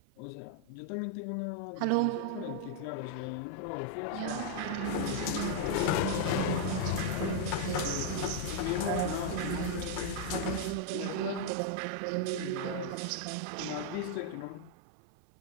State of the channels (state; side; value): different; both; correlation -0.01